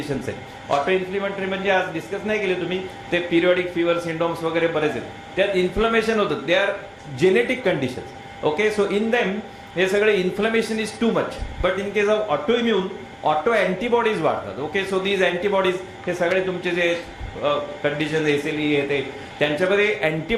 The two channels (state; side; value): identical; both; correlation 1.00